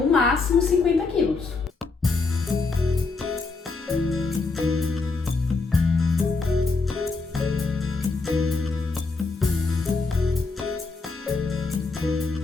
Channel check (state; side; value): quieter; right; 4.0 dB